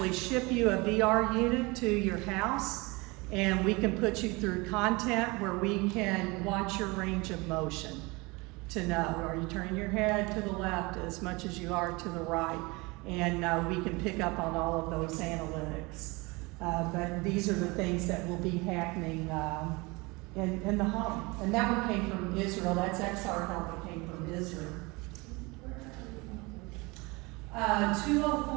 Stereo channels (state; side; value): quieter; left; 25.4 dB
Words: ship you a VR unit to your house, and we can put you through content where we can watch your range of motion to know, are you turning your head to the left as much as you are to the right? And we can pick up on all of those analytics. But these are the things that will be happening in the home. And that one came from Israel. That's XR Health that came from Israel.